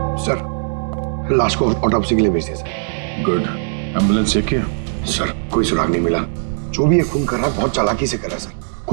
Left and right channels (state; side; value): silent; left; digital silence